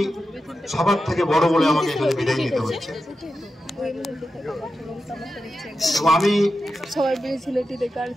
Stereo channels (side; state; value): both; normal; correlation 0.90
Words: সবার থেকে বড় বলে আমাকে এখানে বিদায় নিতে হচ্ছে। আমি